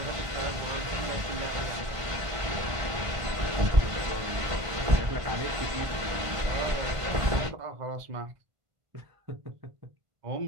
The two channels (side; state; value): left; late; 1.5 ms